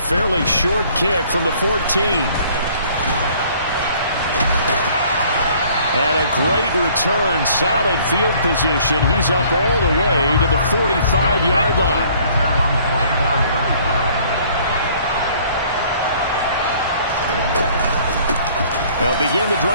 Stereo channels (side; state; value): both; inverted; correlation -0.57